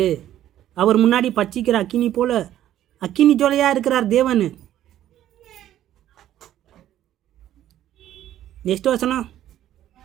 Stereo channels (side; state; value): left; quieter; 12.2 dB